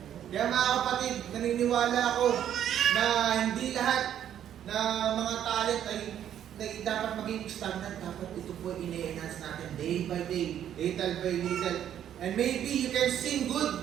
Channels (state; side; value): quieter; left; 10.3 dB